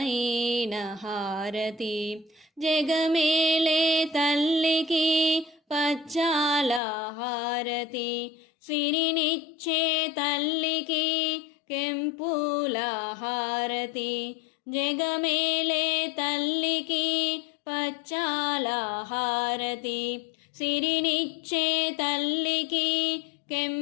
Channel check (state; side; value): drops out; right; at 6.8 s